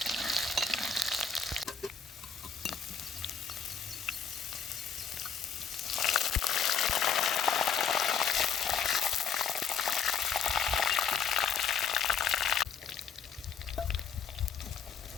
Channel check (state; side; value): quieter; right; 6.5 dB